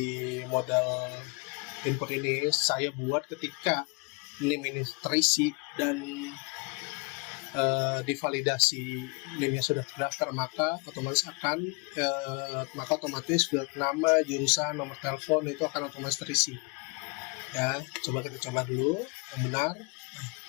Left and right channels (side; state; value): right; quieter; 31.7 dB